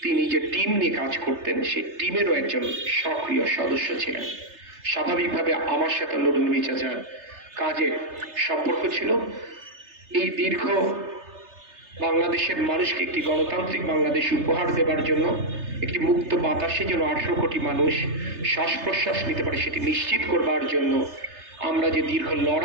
তিনি যে টিম নিয়ে কাজ করতেন সেই টিমেরও একজন সক্রিয় সদস্য ছিলেন। স্বাভাবিকভাবে আমার সাথে নুরুন নবী চাচার কাজে সম্পর্ক ছিল। এই দীর্ঘ বাংলাদেশের মানুষকে একটি গণতান্ত্রিক বাংলাদেশ উপহার দেবার জন্য, একটি মুক্ত বাতাসে যেন 18 কোটি মানুষ শ্বাস প্রশ্বাস নিতে পারে সেটি নিশ্চিত করবার জন্য আমরা যে দীর্ঘ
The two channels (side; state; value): left; late; 3.3 ms